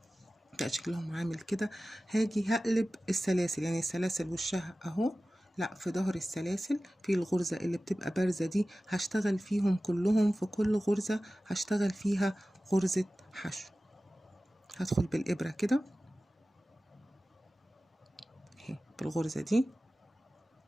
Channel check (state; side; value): normal; both; correlation 0.96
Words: بقى شكلهم عامل كده. هاجي هقلب السلاسل، يعني السلاسل وشها اهو، لا في ظهر السلاسل في الغرزة اللي بتبقى بارزة دي هشتغل فيهم كلهم. في كل غرزة هشتغل فيها غرزة حشو. هدخل بالإبرة كده اهي بالغرزة دي،